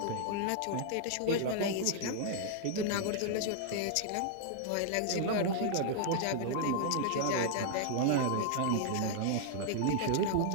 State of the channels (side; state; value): both; different; correlation 0.00